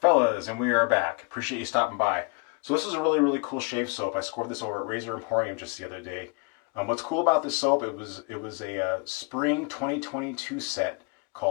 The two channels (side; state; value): right; quieter; 31.9 dB